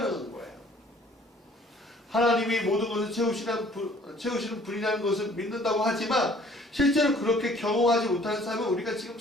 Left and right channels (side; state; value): both; normal; correlation 0.56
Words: 거예요. 하나님이 모든 것을 채우시는 분이라는 것을 믿는다고 하지만 실제로 그렇게 경험하지 못하는 삶을 우리가 지금